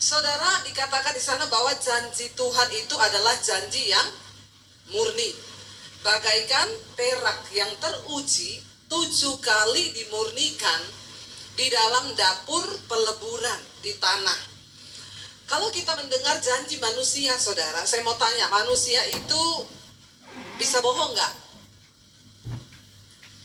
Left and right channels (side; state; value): both; identical; correlation 1.00